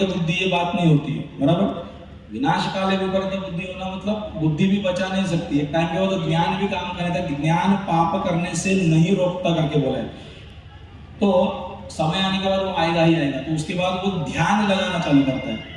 बुद्धि, ये बात नहीं होती है, बराबर। विनाशकाले विपरीत बुद्धि होना मतलब बुद्धि भी बचा नहीं सकती है। टाइम के बाद तो ज्ञान भी काम करने था, ज्ञान पाप करने से नहीं रोकता करके बोला है। तो समय आने के बाद वो आएगा ही आएगा। तो उसके बाद वो ध्यान लगाना चालू करता है,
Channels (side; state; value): both; identical; correlation 1.00